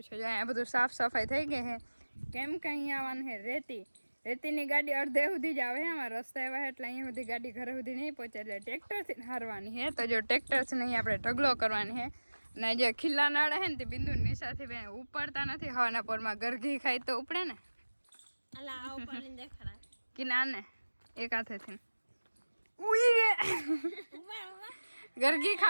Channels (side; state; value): both; inverted; correlation -1.00